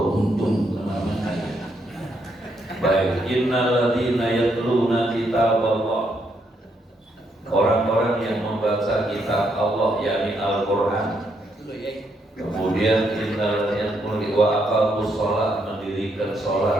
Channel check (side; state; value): both; normal; correlation 0.76